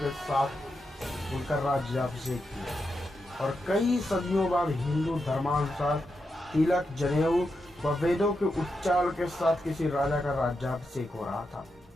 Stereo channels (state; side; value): normal; both; correlation 0.86